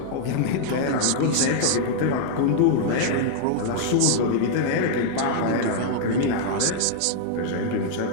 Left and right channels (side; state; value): both; different; correlation -0.01